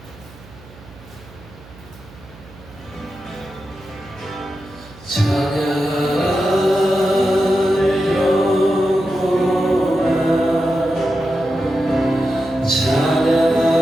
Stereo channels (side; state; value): right; noise; hum, 21 dB below the sound